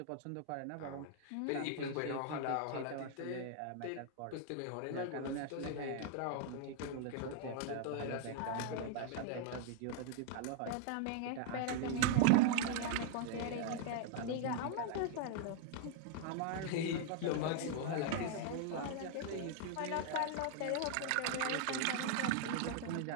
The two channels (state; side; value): different; both; correlation 0.00